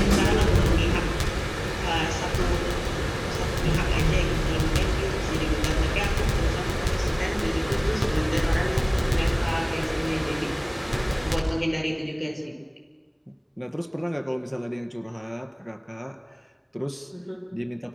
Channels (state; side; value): identical; both; correlation 1.00